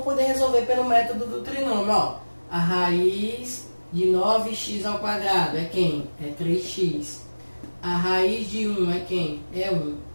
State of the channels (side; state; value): both; inverted; correlation -1.00